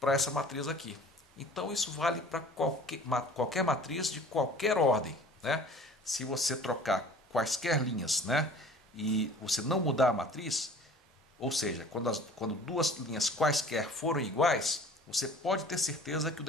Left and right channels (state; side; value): normal; both; correlation 0.46